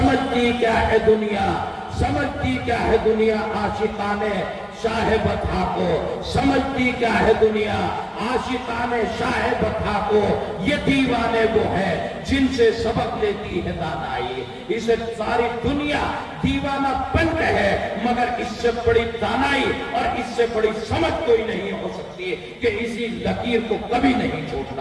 کیا ہے دنیا، سمجھتی کیا ہے دنیا عاشقان شاہ بطحا کو، سمجھتی کیا ہے دنیا عاشقان شاہ بطحا کو، یہ دیوانے وہ ہیں جن سے سبق لیتی ہے دانائی۔ اسے ساری دنیا دیوانہ پنٹ ہے، مگر اس سے بڑی دانائی اور اس سے بڑی سمجھ کوئی نہیں ہو سکتی کہ اسی لکیر کو کبھی نہیں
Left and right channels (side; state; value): both; identical; correlation 1.00